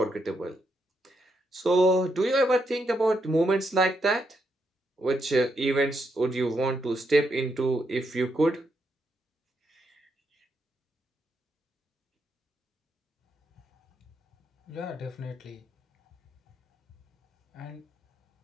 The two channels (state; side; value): normal; both; correlation 0.80